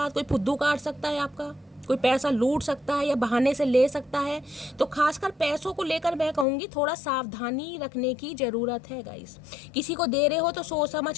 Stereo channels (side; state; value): right; drops out; at 6.5 s